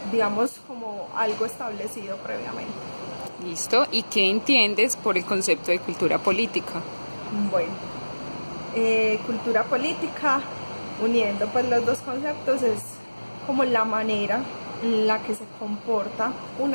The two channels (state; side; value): inverted; both; correlation -1.00